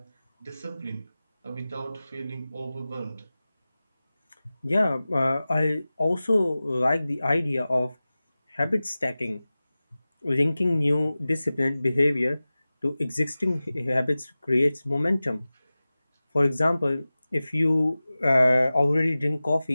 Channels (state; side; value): inverted; both; correlation -0.97